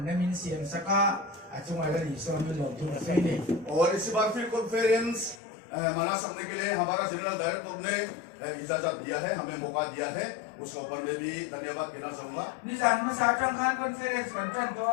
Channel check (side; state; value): right; drops out; at 5.4 s